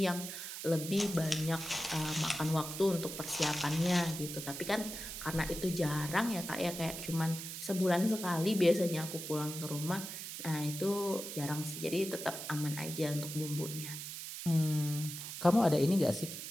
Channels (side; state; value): right; noise; hiss, 8 dB below the sound